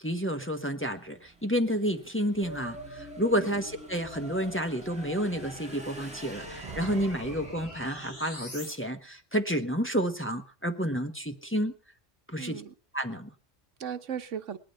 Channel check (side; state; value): both; normal; correlation 0.39